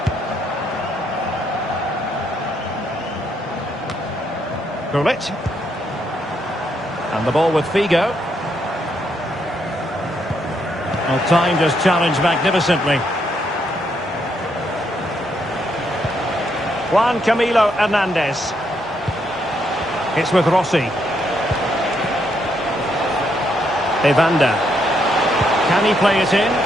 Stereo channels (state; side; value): normal; both; correlation 0.76